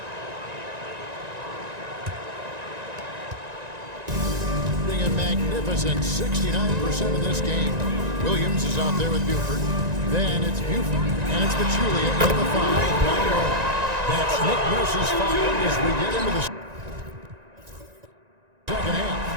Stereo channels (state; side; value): late; left; 1.9 ms